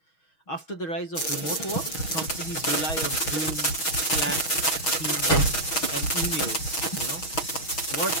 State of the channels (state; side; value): late; right; 6.3 ms